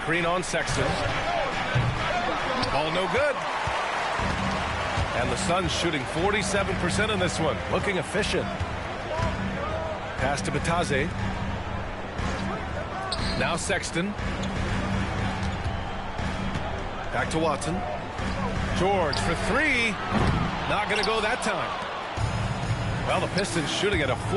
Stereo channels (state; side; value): identical; both; correlation 1.00